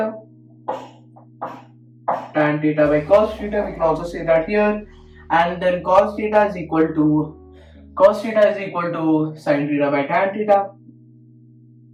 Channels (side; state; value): both; identical; correlation 1.00